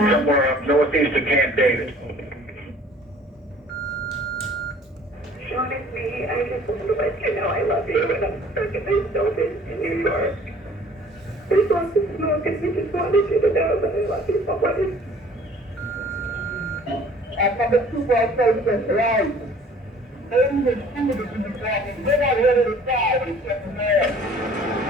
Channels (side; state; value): both; normal; correlation 0.52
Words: somewhere up northeast of Camp David. Honestly, I just want to let you know I love you, and I'm stuck in this building in New York. We want to smoke, and we just wanted you to know that I love you so much. I'm from the football process, right? Only the students in the problem. They're not ready to die except for there.